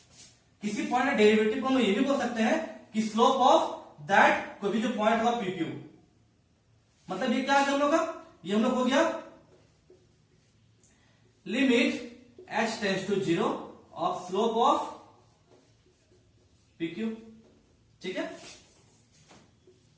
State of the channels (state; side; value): identical; both; correlation 1.00